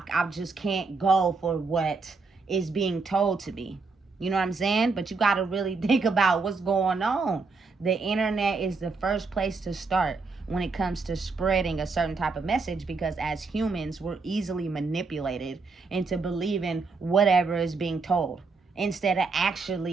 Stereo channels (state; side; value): quieter; left; 4.2 dB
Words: just can't go for what is being told to me. You know what I'm saying? But you got to really think about what's going on. The internet is the first place to start when it comes to spreading a certain type of message, because as humans, we're easily manipulated into believing whatever is being told instead of